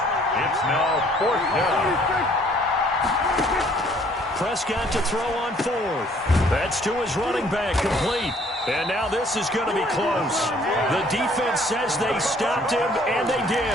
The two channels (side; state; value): both; normal; correlation 0.60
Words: It's now 4th down. Prescott to throw on 4th. That's to his running back, complete. And now this is going to be close. The defense says they stopped him, and they